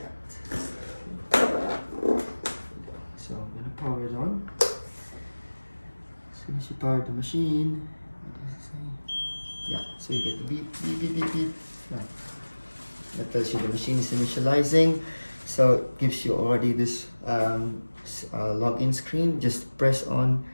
So I'm gonna power it on. As soon as you power the machine, what does it say? Yeah, so you get the beep, beep, beep, beep, beep. Yeah. That tells you the machine is initializing. So it gives you already this login screen. Just press on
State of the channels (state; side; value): inverted; both; correlation -1.00